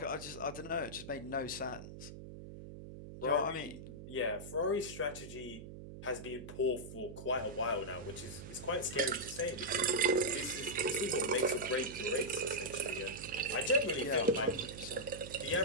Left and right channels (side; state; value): right; noise; hum, 12 dB below the sound